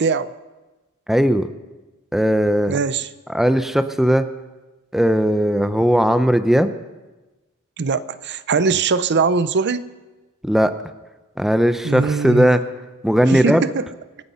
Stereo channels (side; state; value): both; normal; correlation 0.75